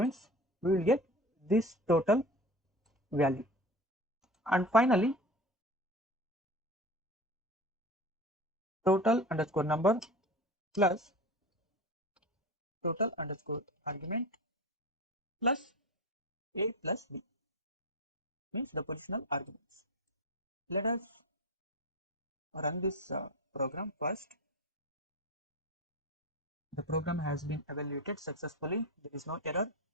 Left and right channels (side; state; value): both; normal; correlation 0.31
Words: we will get this total value. And finally, total underscore number plus total underscore argument plus A plus B, means the positional arguments. Let us run this program first. The program has been evaluated successfully. There is no error.